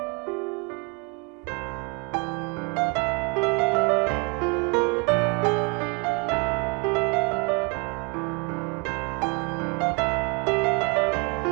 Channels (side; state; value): left; quieter; 32.5 dB